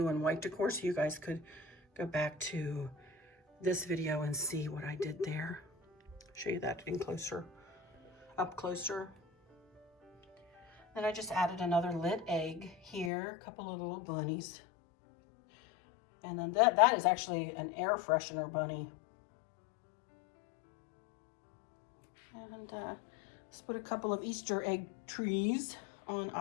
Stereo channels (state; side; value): drops out; right; at 13.1 s